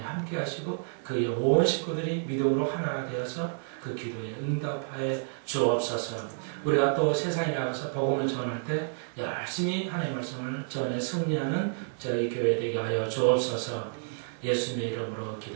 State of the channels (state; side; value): silent; left; digital silence